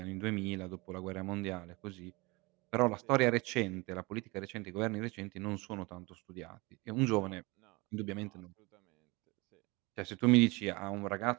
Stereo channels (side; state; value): left; quieter; 25.3 dB